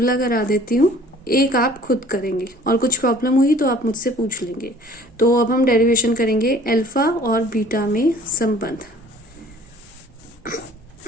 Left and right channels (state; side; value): normal; both; correlation 0.52